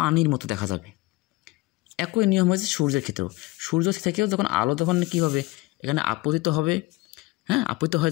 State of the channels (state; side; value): quieter; right; 21.1 dB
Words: মতো দেখা যাবে। একই নিয়ম হয়েছে সূর্যের ক্ষেত্রেও। সূর্য থেকেও যখন আলো যখন কী হবে? এখানে আপতিত হবে, হ্যাঁ, আপতিত হয়